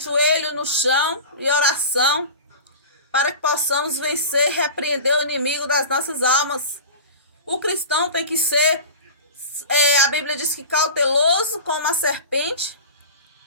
no chão e oração, para que possamos vencer e repreender o inimigo das nossas almas. O cristão tem que ser, a Bíblia diz que cauteloso como a serpente,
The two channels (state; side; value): inverted; both; correlation -0.33